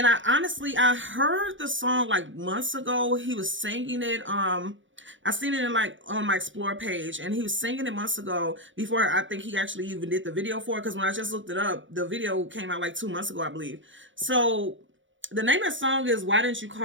I heard the song like months ago. He was singing it. I seen it in like on my Explore page, and he was singing it months ago before I think he actually even did the video for it. Because when I just looked it up, the video came out like 2 months ago, I believe. So the name of the song is Why Didn't You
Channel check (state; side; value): late; left; 0.56 ms